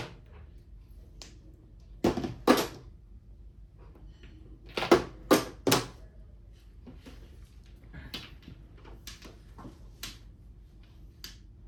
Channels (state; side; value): identical; both; correlation 1.00